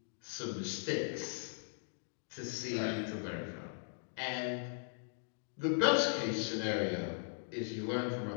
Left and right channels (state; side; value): silent; right; digital silence